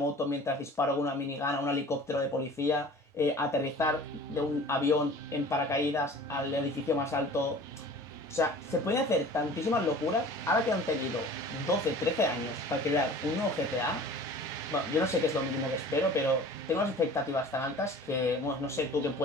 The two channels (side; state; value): both; normal; correlation 0.44